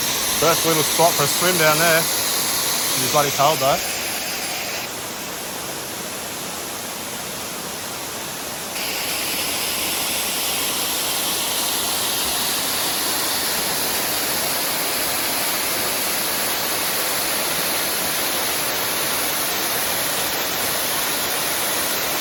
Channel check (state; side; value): identical; both; correlation 1.00